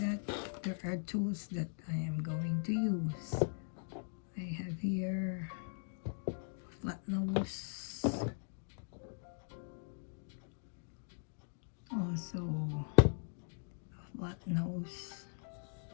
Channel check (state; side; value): silent; right; digital silence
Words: there are tools that I am going to use. I have here a flat nose, also a flat nose,